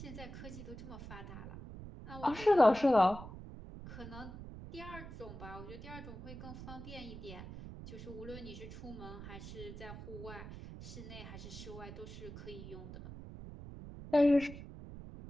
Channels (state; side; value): noise; right; rumble, 11 dB below the sound